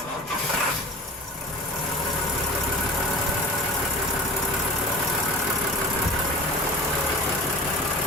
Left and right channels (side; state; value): both; normal; correlation 0.37